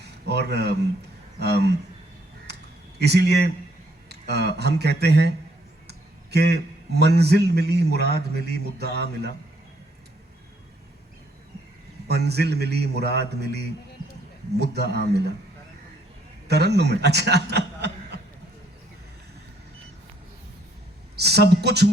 और इसीलिए हम कहते हैं कि मंजिल मिली, मुराद मिली, मुद्दा मिला। मंजिल मिली, मुराद मिली, मुद्दा मिला। तरन्नुम है, अच्छा। सब कुछ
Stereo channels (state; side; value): normal; both; correlation 0.68